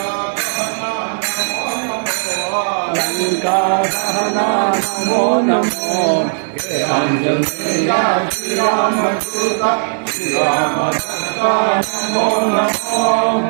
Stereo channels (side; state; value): left; silent; 57 dB below the other